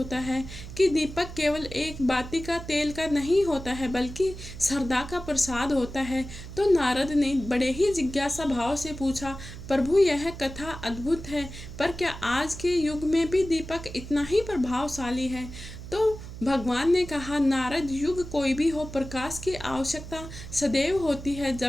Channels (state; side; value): noise; right; hum, 12 dB below the sound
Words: है कि दीपक केवल एक बाती का तेल का नहीं होता है बल्कि श्रद्धा का प्रसाद होता है। तो नारद ने बड़े ही जिज्ञासा भाव से पूछा, प्रभु यह कथा अद्भुत है, पर क्या आज के युग में भी दीपक इतना ही प्रभावशाली है? तो भगवान ने कहा, नारद, युग कोई भी हो, प्रकाश की आवश्यकता सदैव होती है।